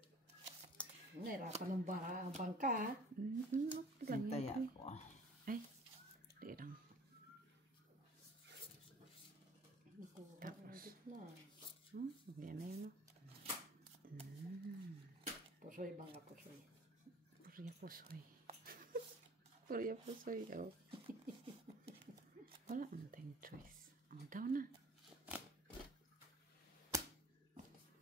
Nahirapan ng bangka ha. Okay lang Hintay yan. ako. Ay. Di lang. Tapos. Na. Yan na yun. No? Pusoy, bangka pusoy. Purya pusoy. Purya pusoy. Oh. Wala ang tayong choice. Ang daw na.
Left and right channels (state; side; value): normal; both; correlation 0.47